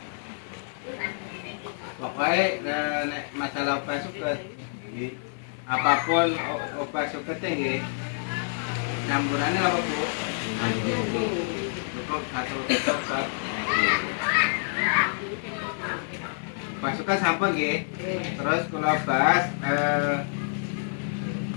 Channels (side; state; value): right; silent; 60 dB below the other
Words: Pokoknya nek masalah obat suket apapun obat suketnya nggih campurannya apa Bu? Cukup satu obat. Obat suket sampun nggih. Terus kula bahas